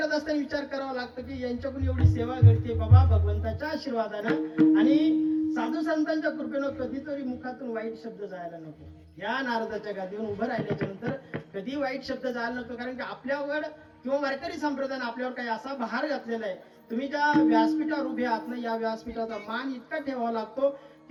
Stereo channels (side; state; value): both; identical; correlation 1.00